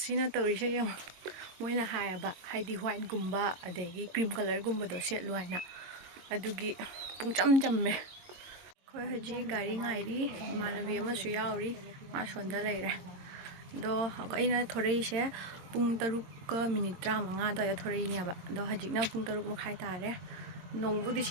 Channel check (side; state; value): left; late; 22 ms